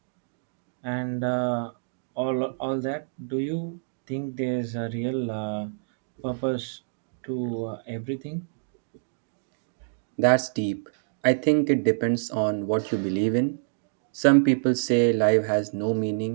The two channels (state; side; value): silent; left; digital silence